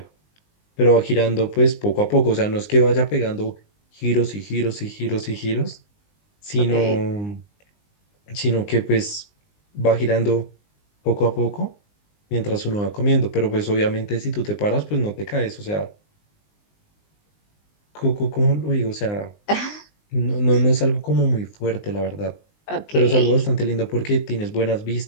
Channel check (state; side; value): late; right; 19 ms